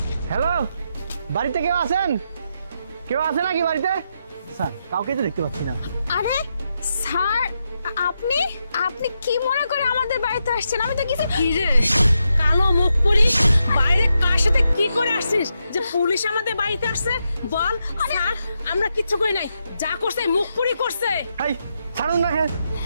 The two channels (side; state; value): both; inverted; correlation -0.84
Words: Hello, বাড়িতে কেউ আছেন? কেউ আছে নাকি বাড়িতে? স্যার, কাউকে তো দেখতে পাচ্ছি না। আরে স্যার, আপনি আপনি কি মনে করে আমাদের বাড়িতে আসছেন? আমি তো কিছু কি রে কালো মুখ পরি, বাইরে কার সাথে কি করে আসছিস যে পুলিশ আমাদের বাড়িতে আসছে? বল। স্যার, আমরা কিচ্ছু করি নাই, যা করছে মুখ পুরি করছে। এই ছাড়ুন না। হ্যাঁ,